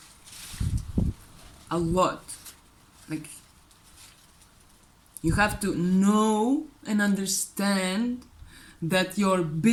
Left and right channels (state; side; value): identical; both; correlation 1.00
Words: a lot. Like, you have to know and understand that your